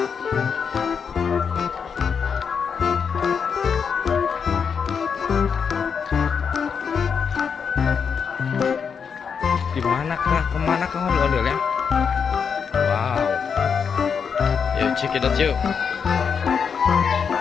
Kemana kah ondel-ondelnya? Wow. Yuk check it out yuk.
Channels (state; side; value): quieter; right; 6.5 dB